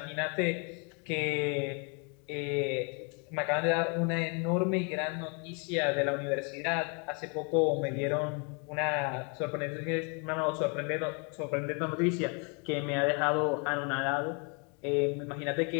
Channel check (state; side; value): quieter; right; 35.4 dB